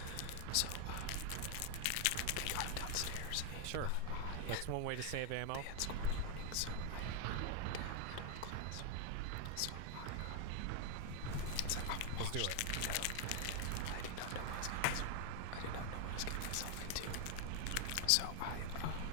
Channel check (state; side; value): different; both; correlation 0.01